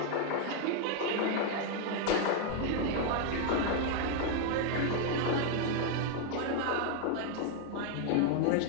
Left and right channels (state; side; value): different; both; correlation 0.00